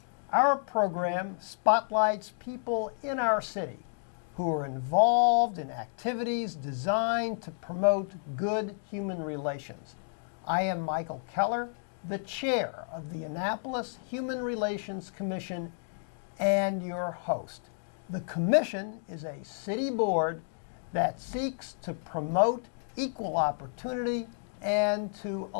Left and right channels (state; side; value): silent; right; digital silence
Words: Our program spotlights people in our city who are involved in activities designed to promote good human relations. I am Michael Keller, the chair of the Annapolis Human Relations Commission and your host. The commission is a city board that seeks to promote equal opportunity and to